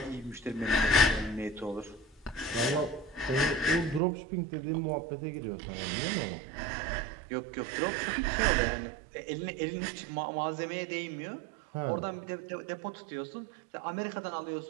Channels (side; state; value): left; drops out; at 4.0 s